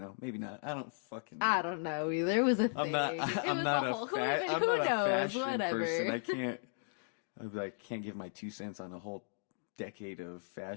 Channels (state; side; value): silent; right; digital silence